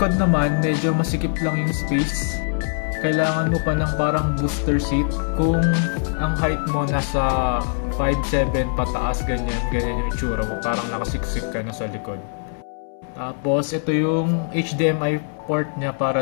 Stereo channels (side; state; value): right; silent; 64 dB below the other